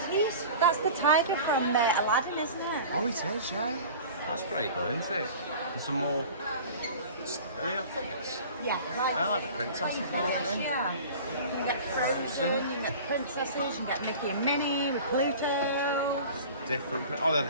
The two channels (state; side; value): inverted; both; correlation -0.40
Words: that's the tiger from Aladdin, isn't it? Oh, it is, yeah. That's pretty good, isn't it? And some more... Are they not figures? Yeah. I like the princesses, aren't they? Yeah. You can get Frozen, you can get the princesses, you can get Mickey and Minnie with Pluto. Different... Oh, they're